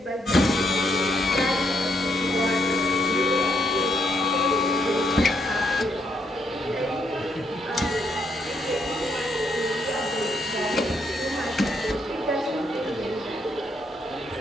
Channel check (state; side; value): normal; both; correlation 0.75